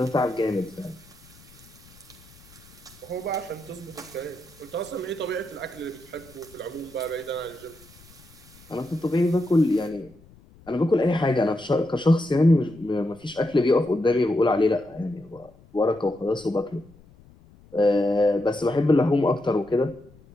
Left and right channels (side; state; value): left; noise; rumble, 25 dB below the sound